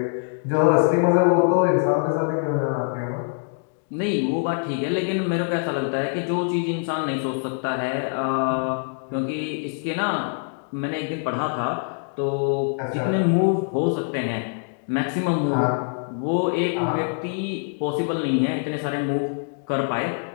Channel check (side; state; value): right; silent; digital silence